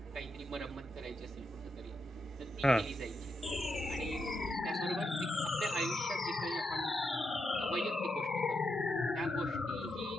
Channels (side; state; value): both; normal; correlation 0.84